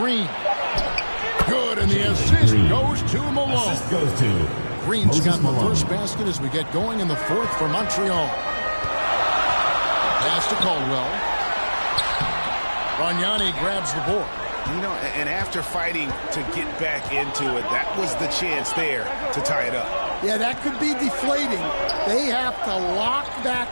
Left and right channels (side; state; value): both; inverted; correlation -1.00